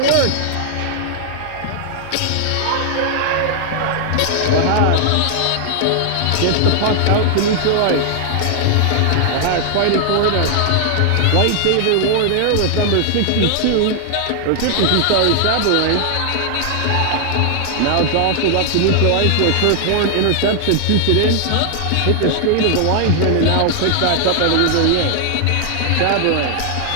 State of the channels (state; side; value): different; both; correlation 0.00